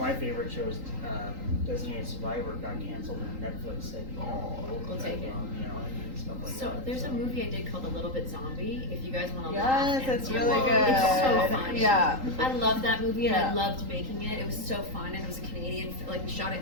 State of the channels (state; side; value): late; left; 3.8 ms